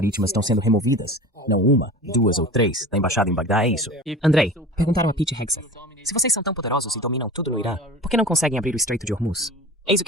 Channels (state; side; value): normal; both; correlation 0.36